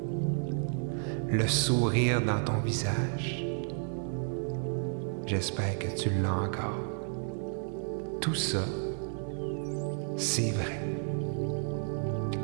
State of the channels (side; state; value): left; silent; 57 dB below the other